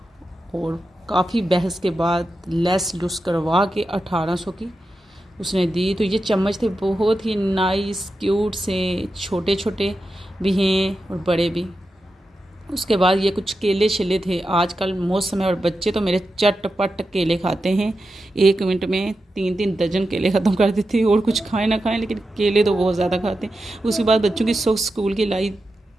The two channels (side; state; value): both; normal; correlation 0.90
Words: और काफ़ी बहस के बाद लेस लुस करवा के 1800 की उसने दी। तो ये चम्मच थे बहुत ही नाइस क्यूट से, छोटे छोटे भी हैं और बड़े भी। उसके बाद ये कुछ केले छिले थे, आजकल मौसम है और बच्चे तो मेरे चटपट केले खाते हैं, 1 मिनट में 3-3 दर्जन केले ख़त्म कर देते हैं, और कुछ खाएं ना खाएं लेकिन केले तो बहुत ज़्यादा खाते हैं। उसके बाद बच्चों की सॉक्स स्कूल की लाई,